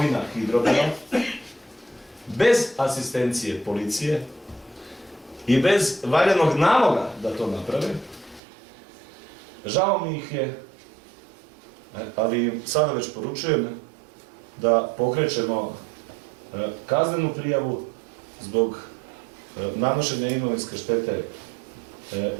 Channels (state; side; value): drops out; left; at 8.4 s